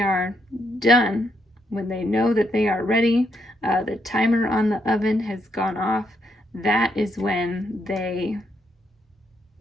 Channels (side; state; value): both; normal; correlation 0.77